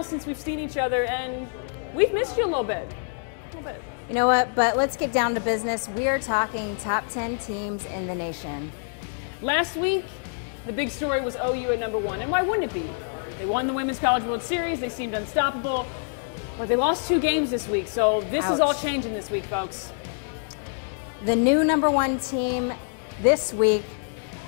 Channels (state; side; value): silent; right; digital silence